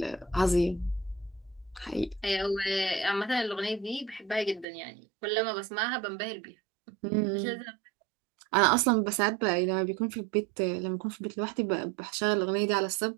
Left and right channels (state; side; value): drops out; left; at 4.7 s